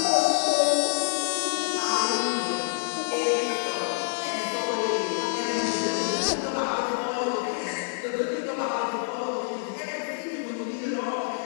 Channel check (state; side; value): silent; right; digital silence